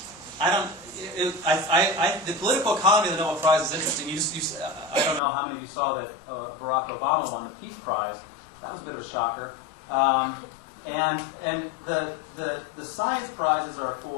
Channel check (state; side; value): drops out; right; at 5.2 s